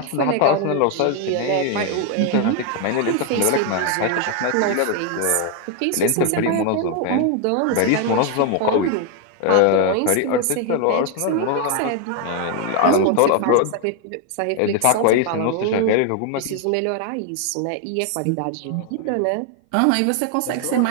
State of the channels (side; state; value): both; different; correlation 0.01